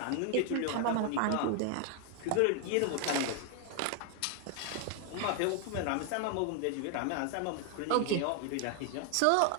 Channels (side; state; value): both; different; correlation 0.00